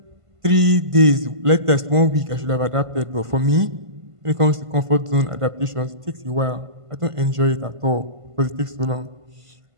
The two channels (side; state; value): left; late; 1.5 ms